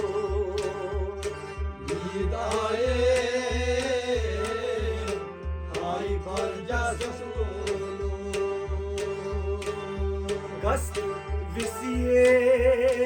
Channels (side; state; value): both; identical; correlation 1.00